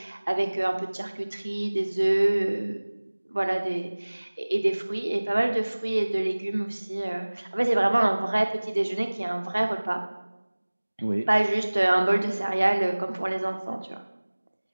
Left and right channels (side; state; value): both; inverted; correlation -1.00